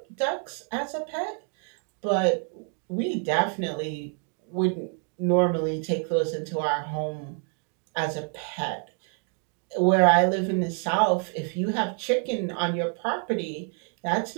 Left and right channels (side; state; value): left; quieter; 39.6 dB